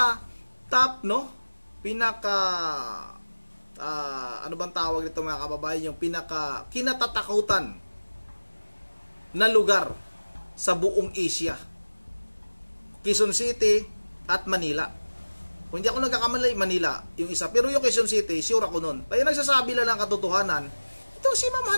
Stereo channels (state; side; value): inverted; both; correlation -1.00